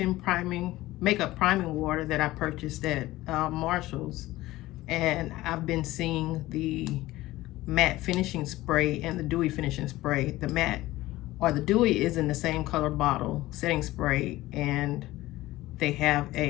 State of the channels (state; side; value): quieter; right; 17.3 dB